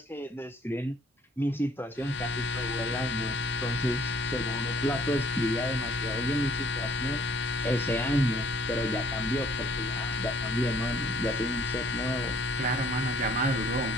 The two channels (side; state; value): both; normal; correlation 0.59